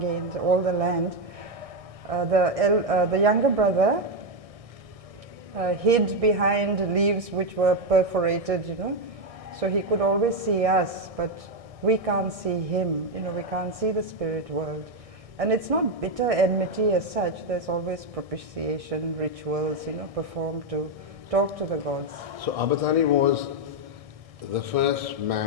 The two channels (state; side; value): late; left; 1.6 ms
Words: all the land. The younger brother hid behind leaves which were perforated, you know, so he could always see us, but we can't see him, you know, we can't see the spirit world. And it's not bitter enmity as such, there's always propitiation, rituals, you know, performed to talk to the gods. So Abathani was the first